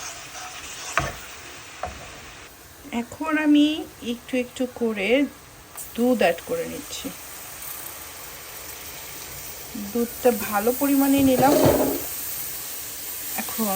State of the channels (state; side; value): identical; both; correlation 1.00